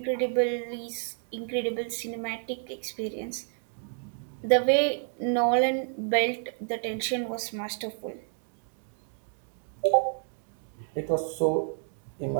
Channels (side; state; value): left; silent; 58 dB below the other